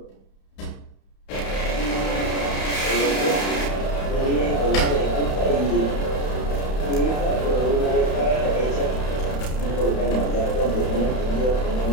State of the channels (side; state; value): right; late; 31 ms